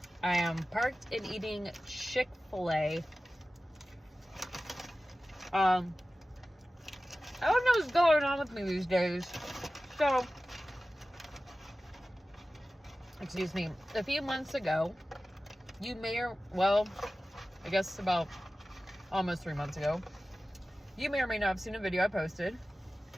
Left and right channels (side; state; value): both; normal; correlation 0.95